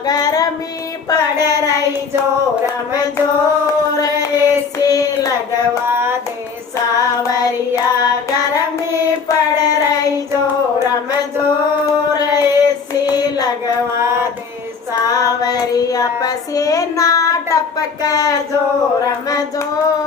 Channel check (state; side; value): quieter; right; 5.5 dB